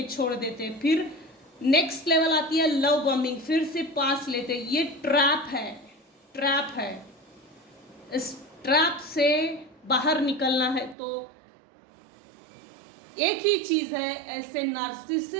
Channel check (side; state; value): left; drops out; at 11.0 s